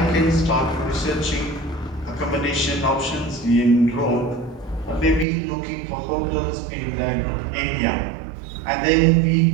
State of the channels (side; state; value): left; drops out; at 5.2 s